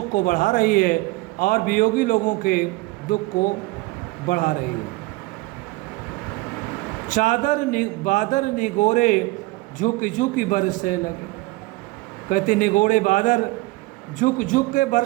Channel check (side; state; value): left; quieter; 21.3 dB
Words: को बढ़ा रही है और वियोगी लोगों के दुख को बढ़ा रही है। बादर निगोरे झुक झुक बरसे लगे। कहते निगोड़े बादर झुक झुक के